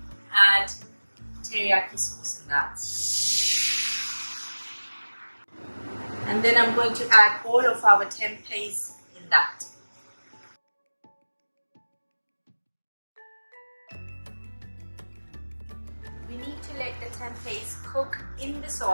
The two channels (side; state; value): both; inverted; correlation -1.00